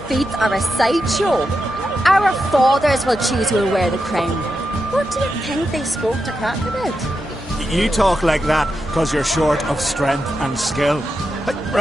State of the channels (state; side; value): normal; both; correlation 0.87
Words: feats are a sideshow. Our fathers will choose who will wear the crown. What do you think they spoke to Crach about? You talk like that because you're short of strength and skill.